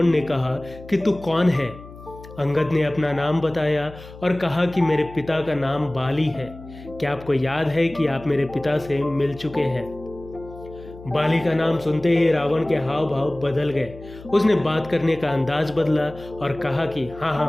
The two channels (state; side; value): noise; left; hum, 17 dB below the sound